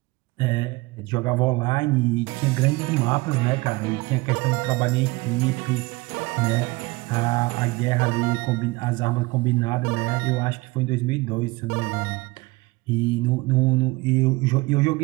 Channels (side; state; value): left; quieter; 22.9 dB